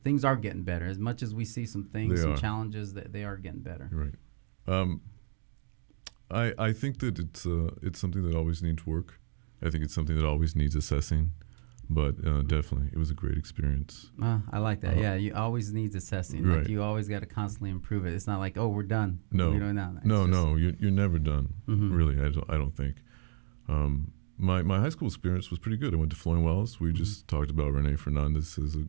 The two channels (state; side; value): silent; left; digital silence